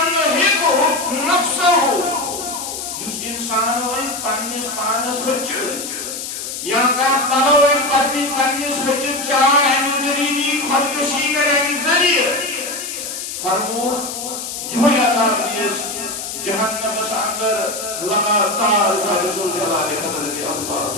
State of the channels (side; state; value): left; noise; hiss, 7 dB below the sound